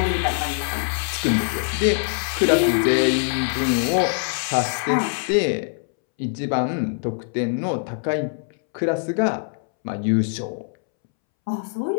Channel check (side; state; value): right; silent; 63 dB below the other